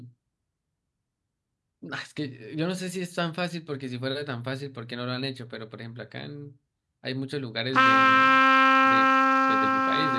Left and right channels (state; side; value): identical; both; correlation 1.00